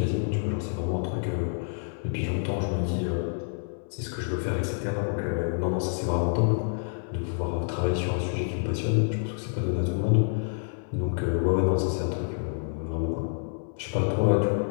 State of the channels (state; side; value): silent; right; 59 dB below the other